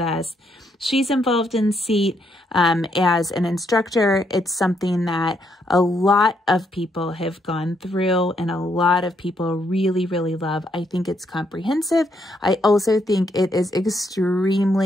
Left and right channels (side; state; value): both; normal; correlation 0.75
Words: us. She's involved in SEAT as an instructor. It's something that a lot of people have gone through and a lot of people really, really love. I think it's comprehensive. I also think it is